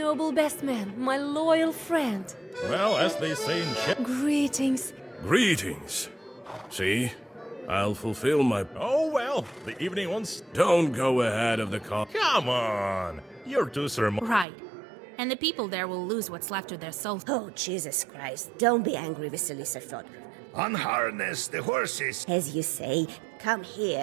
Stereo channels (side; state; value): left; drops out; at 14.5 s